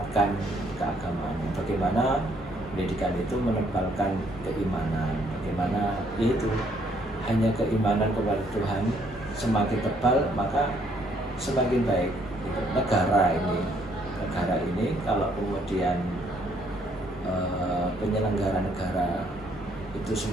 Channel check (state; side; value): normal; both; correlation 0.67